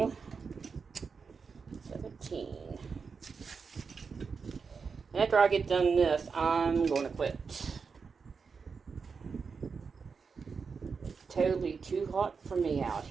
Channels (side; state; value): left; quieter; 5.3 dB